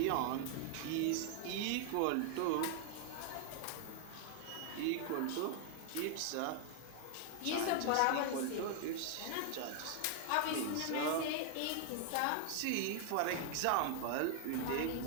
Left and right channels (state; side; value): different; both; correlation 0.00